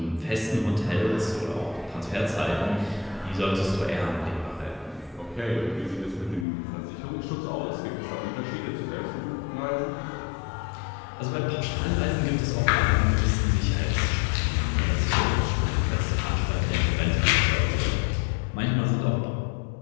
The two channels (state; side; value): drops out; right; at 6.5 s